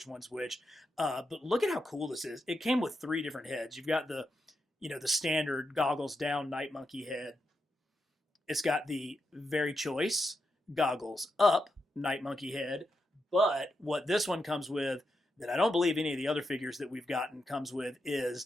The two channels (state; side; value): normal; both; correlation 0.85